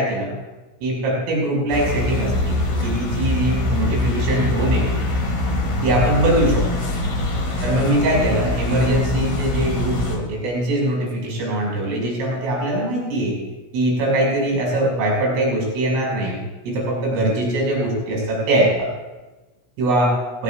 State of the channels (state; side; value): late; left; 16 ms